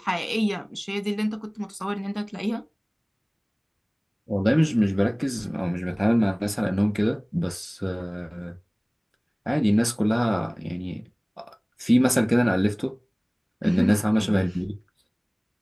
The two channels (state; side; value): identical; both; correlation 1.00